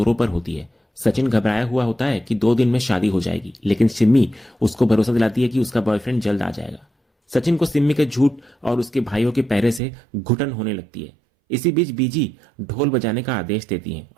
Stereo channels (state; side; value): drops out; left; at 9.8 s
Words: पर होती है। सचिन घबराया हुआ होता है कि 2 दिन में शादी हो जाएगी, लेकिन सिम्मी उसको भरोसा दिलाती है कि उसका बॉयफ्रेंड जल्द आ जाएगा। सचिन को सिम्मी के झूठ और उसके भाइयों के पहरे से घुटन होने लगती है। इसी बीच बीजी ढोल बजाने का आदेश देती है